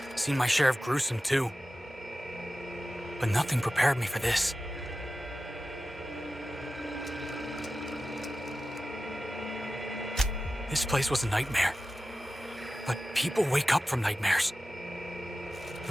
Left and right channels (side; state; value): both; normal; correlation 0.94